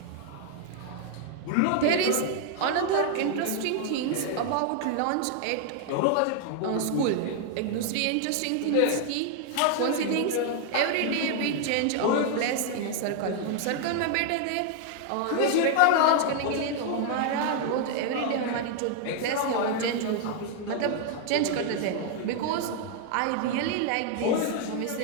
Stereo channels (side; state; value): both; different; correlation 0.00